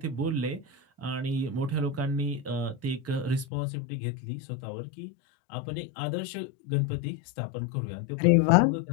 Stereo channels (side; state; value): right; drops out; at 3.5 s